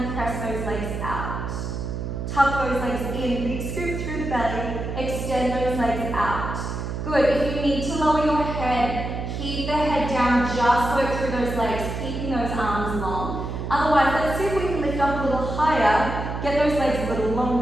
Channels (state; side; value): noise; right; hum, 4 dB below the sound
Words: press those legs out? Tuck those legs in, big scoop through the belly, extend those legs out. Good, if you need to lower your head, keep the head down, just work through those legs, keeping those arms long. Otherwise, let's see if we can lift up a little higher, get those legs a little